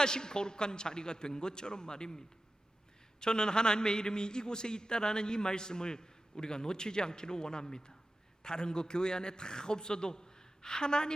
거룩한 자리가 된 것처럼 말입니다. 저는 하나님의 이름이 이곳에 있다라는 이 말씀을 우리가 놓치지 않기를 원합니다. 다른 거 교회 안에 다 없어도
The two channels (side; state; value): both; normal; correlation 0.94